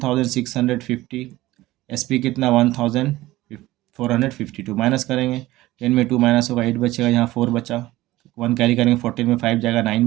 एसपी कितना 1452। माइनस करेंगे, 10 में 2 माइनस होगा, 8 बचेगा, यहाँ 4 बचा, 1 कैरी करेंगे, 14 में 5 जाएगा, 9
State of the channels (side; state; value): left; quieter; 17.4 dB